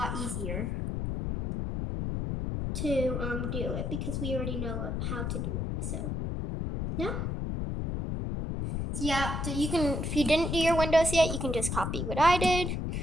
easier to do it because we already know how to do it. So, yeah. So yeah, so you can, if you didn't do your windows yet, you can just copy what I did.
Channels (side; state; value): left; noise; rumble, 2 dB below the sound